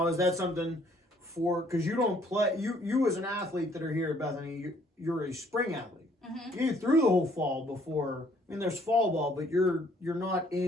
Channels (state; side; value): normal; both; correlation 0.63